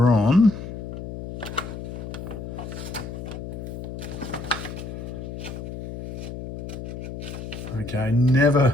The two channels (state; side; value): noise; left; hum, 8 dB below the sound